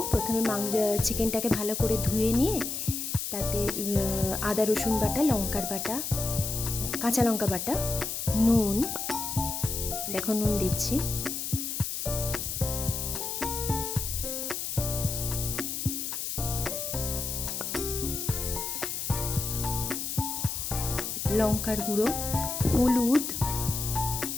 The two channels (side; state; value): left; noise; hiss, 3 dB below the sound